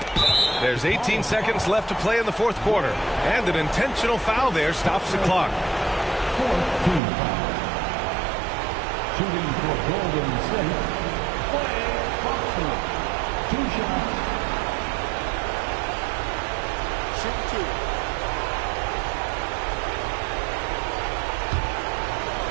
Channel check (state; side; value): drops out; left; at 7.0 s